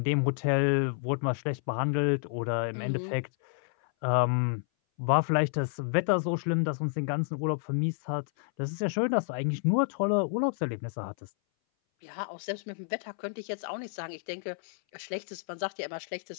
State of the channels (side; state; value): right; silent; 58 dB below the other